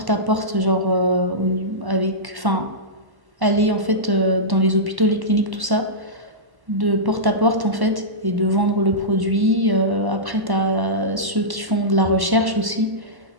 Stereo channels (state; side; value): late; left; 1.1 ms